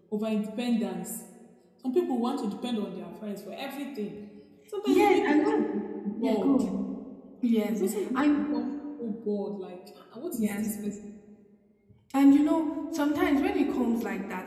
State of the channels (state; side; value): identical; both; correlation 1.00